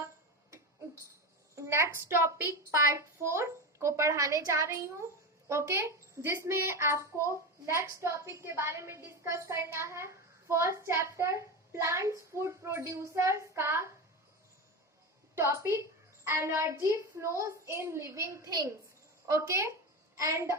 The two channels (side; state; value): both; normal; correlation 0.20